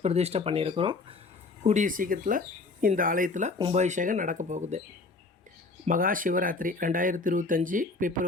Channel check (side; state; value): right; quieter; 3.8 dB